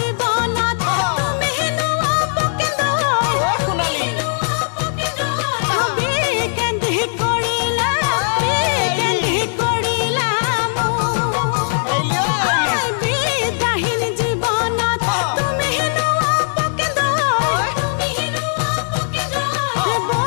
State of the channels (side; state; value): right; silent; 67 dB below the other